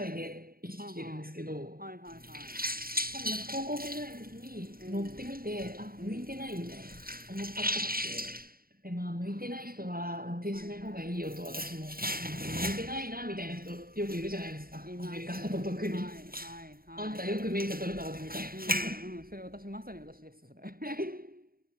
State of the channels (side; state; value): left; late; 0.43 ms